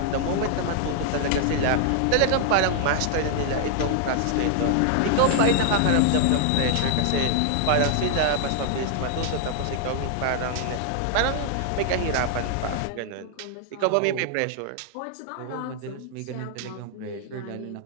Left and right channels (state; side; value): different; both; correlation 0.00